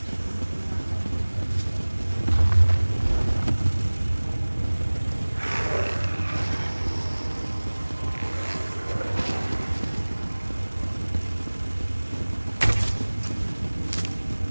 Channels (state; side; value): inverted; both; correlation -1.00